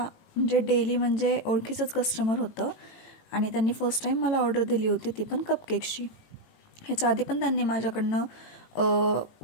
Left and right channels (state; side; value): late; right; 18 ms